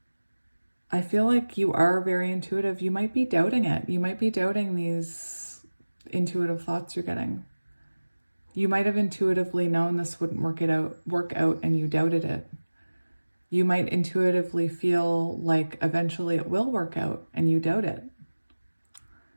you are very intuitive. You might be doubting it. You might be doubting these intuitive thoughts you're getting. You might have intuitively known this wouldn't work out and you doubted it. You might intuitively feel like eventually it will work out and you doubt it.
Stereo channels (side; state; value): both; inverted; correlation -1.00